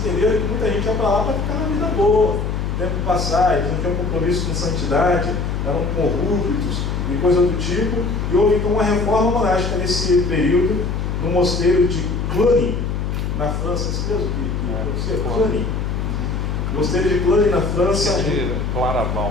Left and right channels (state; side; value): noise; left; hum, 2 dB below the sound